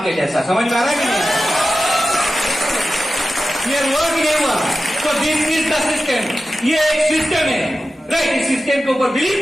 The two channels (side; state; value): both; normal; correlation 0.93